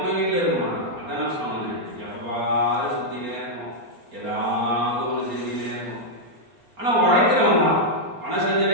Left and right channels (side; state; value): left; late; 4.3 ms